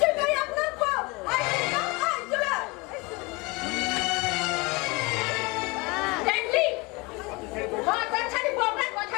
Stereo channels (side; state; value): right; quieter; 25.8 dB